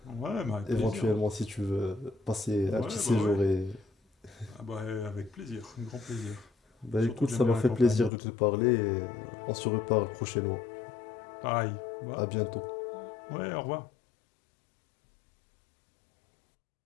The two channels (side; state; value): right; drops out; at 8.1 s